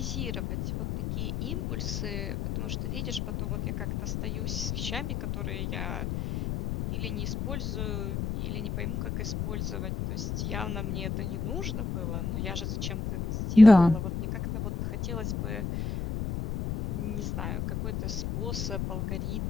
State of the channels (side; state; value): left; noise; rumble, 2 dB below the sound